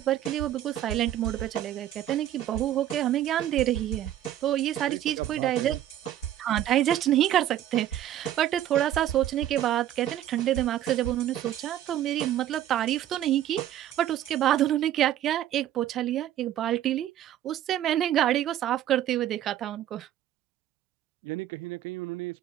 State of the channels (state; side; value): quieter; left; 12.1 dB